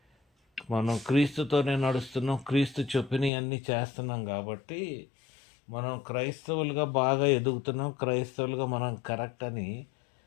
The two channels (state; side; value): drops out; right; at 3.3 s